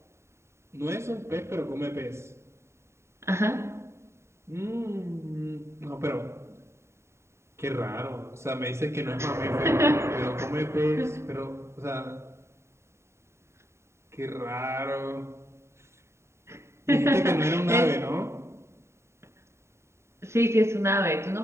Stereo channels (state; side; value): late; left; 0.13 ms